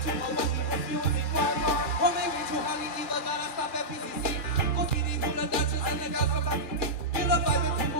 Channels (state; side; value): late; right; 2.4 ms